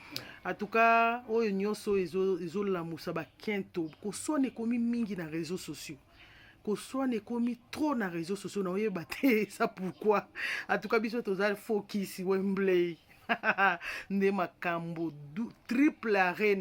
En tout cas oyo nyonso ezolamusa bakento kosone komi mingi na réseaux sociaux. Kosone komi trop na réseaux sociaux na oyeba te ça pourquoi. En tout cas biso tozali focus Wembley. Nde makambo triple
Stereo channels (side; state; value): both; identical; correlation 1.00